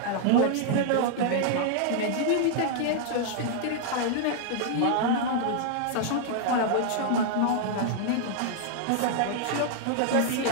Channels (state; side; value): different; both; correlation -0.01